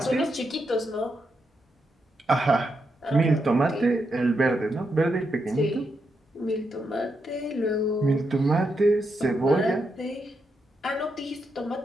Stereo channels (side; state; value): both; normal; correlation 0.83